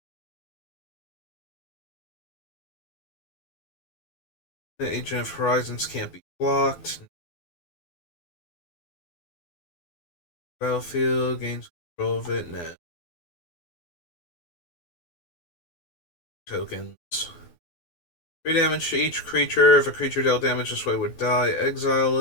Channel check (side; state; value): right; late; 12 ms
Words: The Agent of Horizons can't be blocked. Battlefield gains control of it. Nah. Tokens. 3 damage to each creature. If a creature dealt damage this way would die, exile